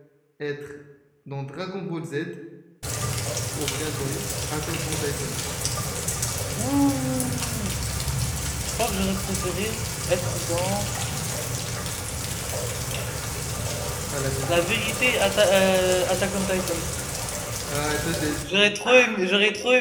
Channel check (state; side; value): identical; both; correlation 1.00